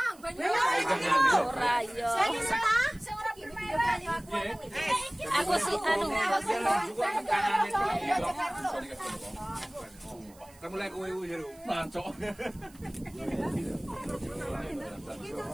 banyu ora yo. Sing ora banyu aku. Aku sih anu. Kamu lagi kowe jero. Mancok.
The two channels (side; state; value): right; noise; hiss, 25 dB below the sound